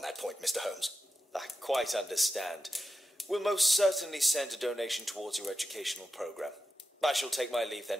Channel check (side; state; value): both; normal; correlation 0.89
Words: that point, Mr. Holmes. I quite understand. We'll most certainly send a donation towards your educational program. I shall take my leave